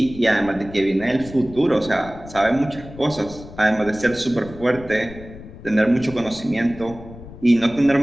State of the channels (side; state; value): left; noise; rumble, 16 dB below the sound